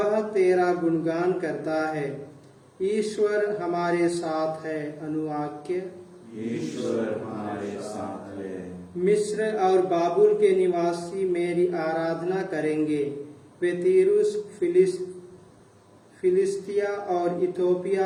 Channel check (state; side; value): identical; both; correlation 1.00